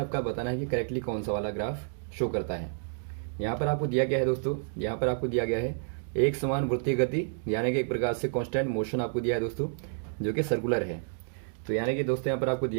बताना है कि करेक्टली कौन सा वाला ग्राफ शो करता है। यहाँ पर आपको दिया गया है दोस्तों, यहाँ पर आपको दिया गया है एक समान वृत्तीय गति, यानी कि एक प्रकार से कांस्टेंट मोशन आपको दिया है दोस्तों, जो कि सर्कुलर है। तो यानी कि दोस्तों यहाँ पर आपको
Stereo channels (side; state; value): left; silent; digital silence